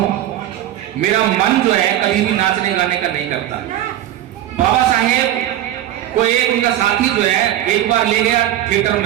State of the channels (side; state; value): left; quieter; 12.8 dB